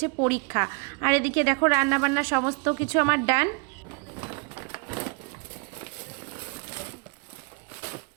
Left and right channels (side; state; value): left; quieter; 32.7 dB